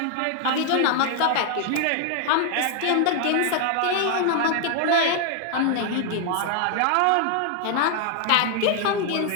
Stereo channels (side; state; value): both; different; correlation 0.00